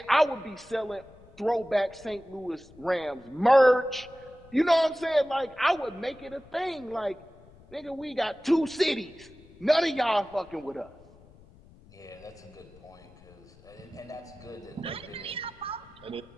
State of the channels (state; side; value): noise; left; rumble, 24 dB below the sound